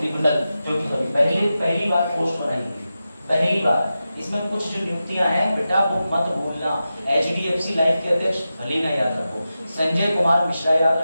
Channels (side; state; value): both; inverted; correlation -0.92